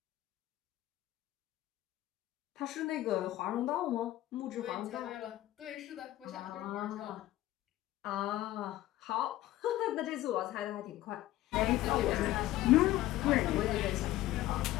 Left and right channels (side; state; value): right; quieter; 15.2 dB